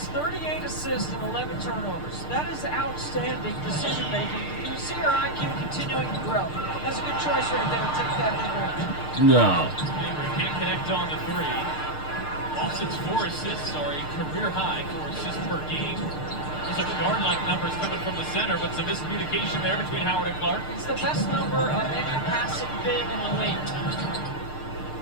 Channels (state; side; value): late; right; 6.6 ms